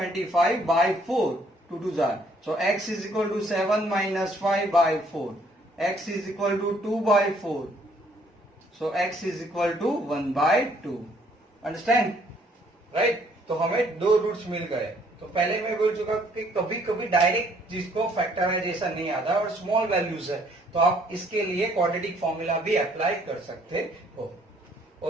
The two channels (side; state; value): both; normal; correlation 0.64